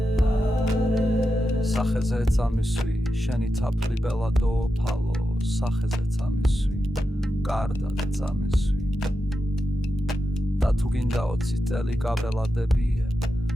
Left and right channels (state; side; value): normal; both; correlation 0.89